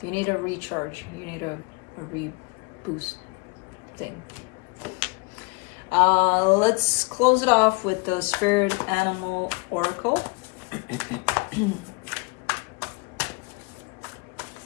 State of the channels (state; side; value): quieter; right; 29.5 dB